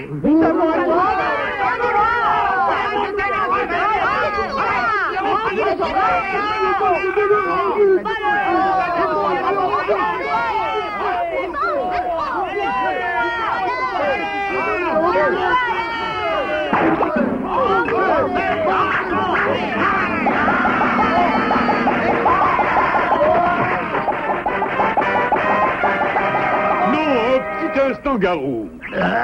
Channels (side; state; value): both; identical; correlation 1.00